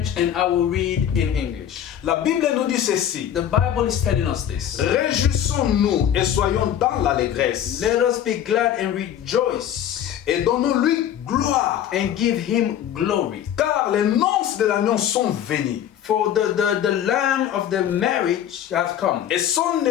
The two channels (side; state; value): right; quieter; 10.2 dB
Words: and I will read in English. La Bible nous dit ceci. The Bible is telling us this. Réjouissons-nous et soyons dans l'allégresse. Let us be glad and rejoice Et donnons-lui gloire. and give him glory. Car les noces de l'agneau sont venues. For the lamb of the marriage has come, Et son